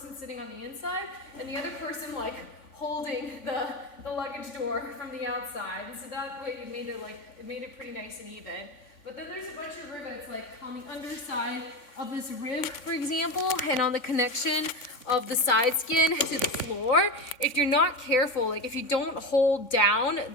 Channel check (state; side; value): late; right; 3.5 ms